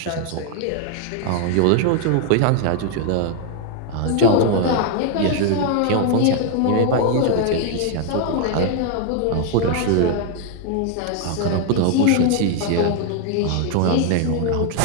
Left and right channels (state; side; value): different; both; correlation 0.00